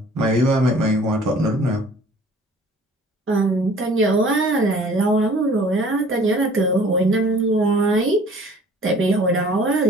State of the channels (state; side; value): normal; both; correlation 0.51